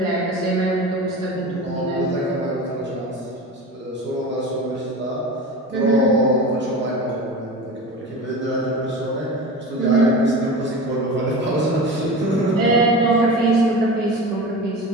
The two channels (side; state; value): both; normal; correlation 0.30